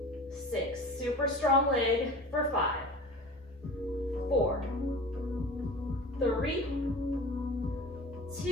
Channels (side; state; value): both; normal; correlation 0.38